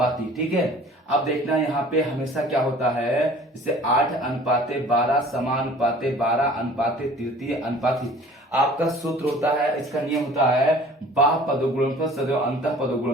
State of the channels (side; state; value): both; normal; correlation 0.48